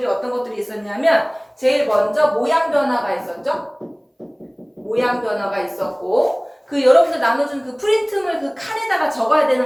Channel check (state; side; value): identical; both; correlation 1.00